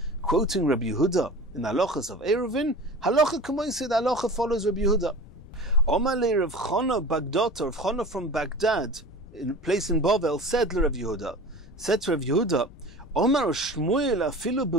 quoting Rabbi Yehuda in the halachas of Eirovin, halacha k'moisid, halacha follows Rabbi Yehuda. Omalei Rav Chana Bagdata, Rav Chana from Baghdad, in a place in Bavel, said to Rav Yehuda, Omar Shmuel afilu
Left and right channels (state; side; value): noise; left; rumble, 20 dB below the sound